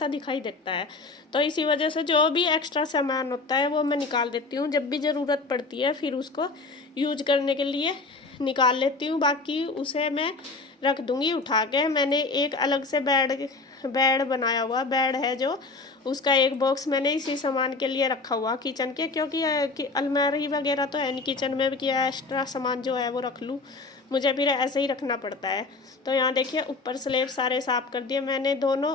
दिखाई देता है। तो इसी वजह से जो भी एक्स्ट्रा सामान होता है वो मैं निकाल देती हूँ। जब भी ज़रूरत पड़ती है फिर उसको यूज करने के लिए निकाल लेती हूँ, बाकी उसे मैं रख दूँगी उठा के। मैंने एक अलग से बेड बनाया हुआ बेड है, जो उसका एक बॉक्स मैंने इसी सामान के लिए रखा हुआ किचन के, क्योंकि अलमारी वगैरह तो है नहीं किचन में कि एक्स्ट्रा सामान जो है वो रख लूँ, मुझे फिर ऐसे ही रखना पड़ता है। तो यहाँ देखिए ऊपर स्लैब सारे साफ़ कर दिए मैंने दोनों,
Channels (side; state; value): right; quieter; 3.8 dB